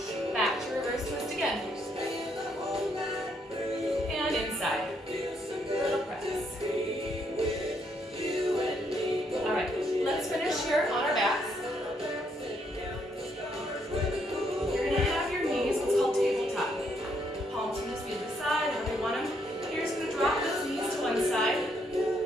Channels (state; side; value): normal; both; correlation 0.73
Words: Back to reverse twist again. And inside. A little press. Alright, let's finish here on our backs. You're going to have your knees, what's called tabletop. Palms can just be to the side, however you want them. You're just going to drop those knees to one side.